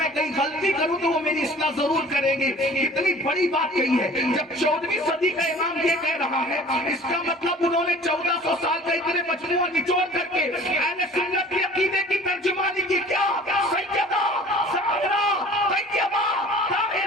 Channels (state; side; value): normal; both; correlation 0.46